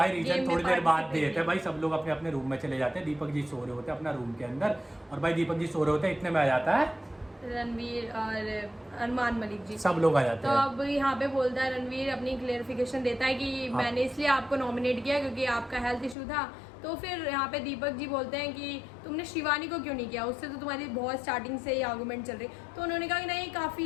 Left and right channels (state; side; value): drops out; right; at 16.2 s